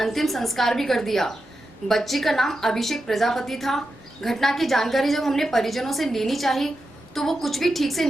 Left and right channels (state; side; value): normal; both; correlation 0.89